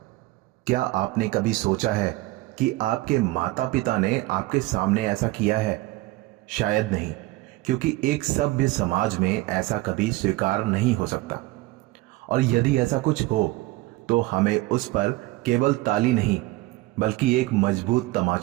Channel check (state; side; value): quieter; left; 19.5 dB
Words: क्या आपने कभी सोचा है कि आपके माता पिता ने आपके सामने ऐसा किया है? शायद नहीं, क्योंकि एक सभ्य समाज में ऐसा कभी स्वीकार नहीं हो सकता। और यदि ऐसा कुछ हो तो हमें उस पर केवल ताली नहीं बल्कि एक मजबूत